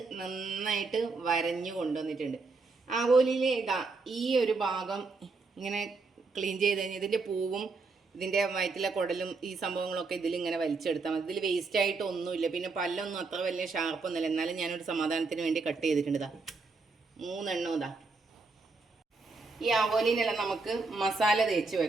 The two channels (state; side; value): quieter; left; 4.0 dB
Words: നന്നായിട്ട് വരഞ്ഞു കൊണ്ടുവന്നിട്ടുണ്ട്. ആവോലിയിലെ ഇതാ ഈ ഒരു ഭാഗം ഇങ്ങനെ ക്ലീൻ ചെയ്ത് കഴിഞ്ഞാൽ ഇതിൻ്റെ പൂവും ഇതിൻ്റെ വയറ്റിലെ കുടലും ഈ സംഭവങ്ങളൊക്കെ ഇതിലിങ്ങനെ വലിച്ചെടുത്താൽ മതി. ഇതിൽ വേസ്റ്റായിട്ട് ഒന്നുമില്ല. പിന്നെ പല്ലൊന്നും അത്ര വലിയ ഷാർപ്പൊന്നുമില്ല. എന്നാലും ഞാനൊരു സമാധാനത്തിന് വേണ്ടി കട്ട് ചെയ്തിട്ടുണ്ട്. ഇതാ 3 എണ്ണം ഇതാ. ഈ ആവോലിനെല്ലാം നമുക്ക് മസാല തേച്ച്